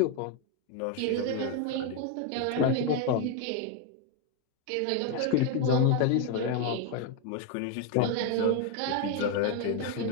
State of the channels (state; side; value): different; both; correlation 0.01